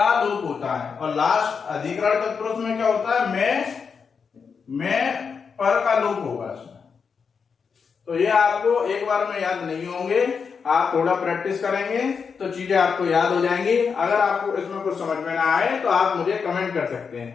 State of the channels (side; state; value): right; quieter; 5.9 dB